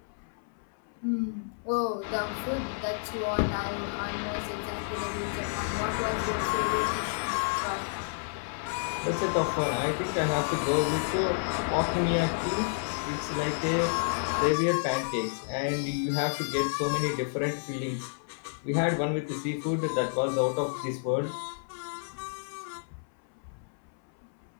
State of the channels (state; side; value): silent; right; 58 dB below the other